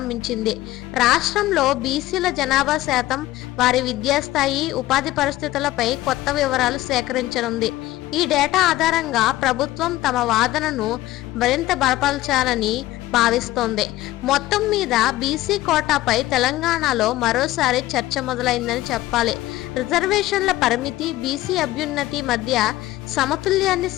రాష్ట్రంలో బీసీల జనాభా శాతం, వారి విద్యాస్థాయి, ఉపాధి పరిస్థితులపై కొత్త వివరాలు సేకరించనుంది. ఈ డేటా ఆధారంగా ప్రభుత్వం తమ వాదనను మరింత బలపరచాలని భావిస్తోంది. మొత్తం మీద బీసీ కోటాపై తెలంగాణలో మరోసారి చర్చ మొదలైందని చెప్పాలి. రిజర్వేషన్ల పరిమితి, బీసీ అభ్యున్నతి మధ్య సమతుల్యాన్ని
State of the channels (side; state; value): right; quieter; 16.4 dB